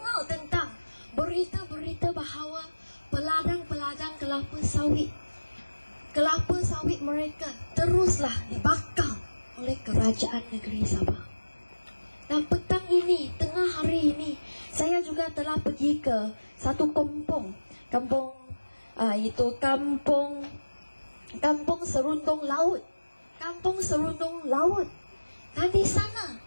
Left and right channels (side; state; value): both; inverted; correlation -1.00